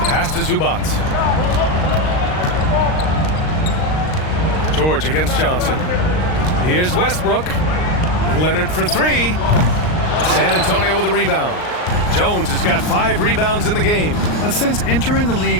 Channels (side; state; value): right; late; 39 ms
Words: pass to Zubac. George against Johnson. Here's Westbrook. Leonard for three. San Antonio with a rebound. Jones has got 5 rebounds in the game. And since entering the